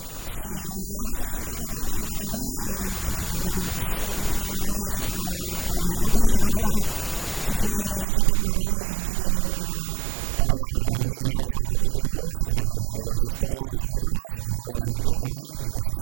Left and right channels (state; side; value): drops out; left; at 8.1 s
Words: Sí, la verdad que si esto nos viene fenomenal, el que hayan pues este tipo de canales para que la gente lo conozca. Sí que hacen falta y vienen fenomenal. Bueno, Marta, mil gracias por tu tiempo. Espero que logres todos tus retos. Nos vemos en el DTM y en los